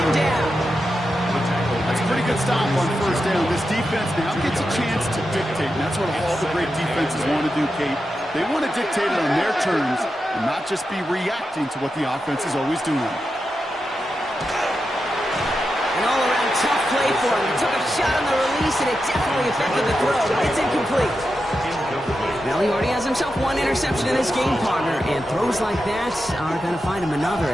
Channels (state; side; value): normal; both; correlation 0.89